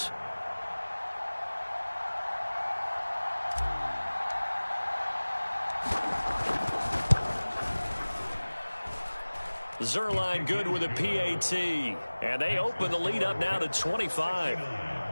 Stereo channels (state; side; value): inverted; both; correlation -1.00